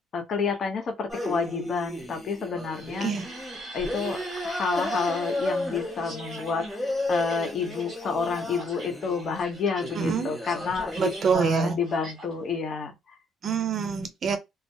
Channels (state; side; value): normal; both; correlation 0.67